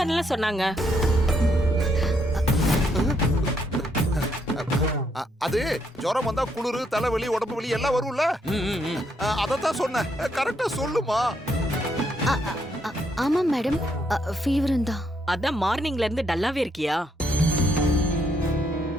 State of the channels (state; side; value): normal; both; correlation 0.75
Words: சொன்னாங்க. அது ஜுரம் வந்தா குளிரு, தலைவலி, உடம்பு வலி எல்லாம் வரும்ல. அதத்தான் சொன்னேன். கரெக்டா சொல்லுமா. ஆமா மேடம், ஃபீவர் தான். அதான் மார்னிங்ல இருந்து டல்லாவே இருக்கியா?